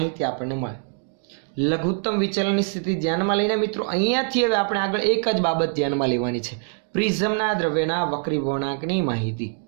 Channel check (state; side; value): silent; left; 56 dB below the other